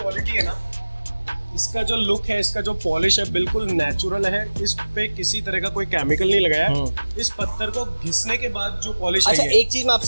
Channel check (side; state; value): both; inverted; correlation -1.00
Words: है ना, इसका जो लुक है, इसका जो पॉलिश है, बिल्कुल नेचुरल है, इस पे किसी तरह का कोई केमिकल नहीं लगाया है। इस पत्थर को घिसने के बाद जो पॉलिश अच्छा है। एक चीज मैं